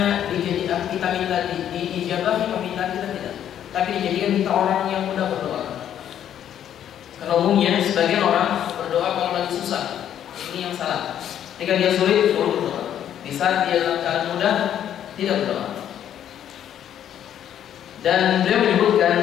dijadikan kita minta diijabahi permintaan kita, tidak, tapi dijadikan kita orang yang mudah berdoa. Karena umumnya sebagian orang berdoa kalau lagi susah, ini yang salah. Ketika dia sulit baru berdoa. Di saat dia dalam keadaan mudah tidak berdoa. Dan beliau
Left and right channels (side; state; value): right; quieter; 10.2 dB